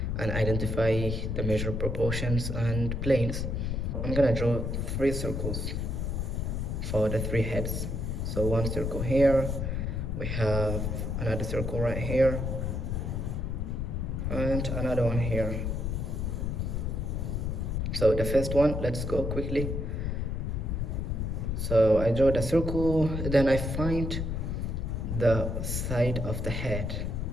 and identify the measure proportions and planes. I'm going to draw 3 circles for the 3 heads. So 1 circle here, we have another circle right here, and another one here. So the first one, let's go quickly. So I draw the circle, then I find the side of the head.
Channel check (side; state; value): left; noise; rumble, 1 dB below the sound